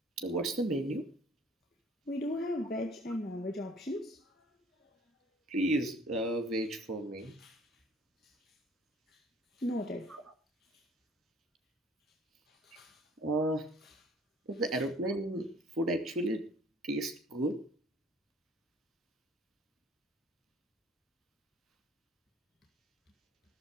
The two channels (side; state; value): both; normal; correlation 0.54